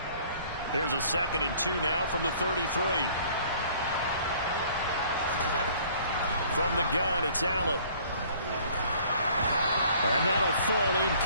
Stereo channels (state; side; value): inverted; both; correlation -0.55